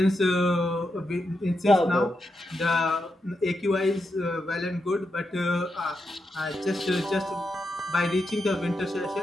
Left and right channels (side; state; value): both; normal; correlation 0.85